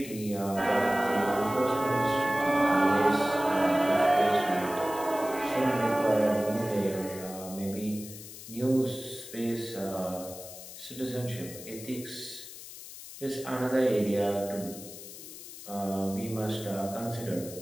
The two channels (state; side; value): noise; left; hiss, 14 dB below the sound